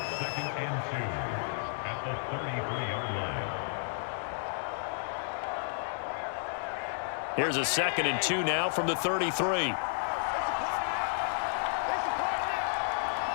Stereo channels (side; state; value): right; silent; digital silence